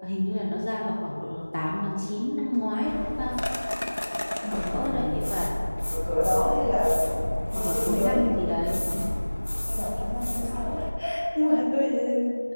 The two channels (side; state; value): both; inverted; correlation -1.00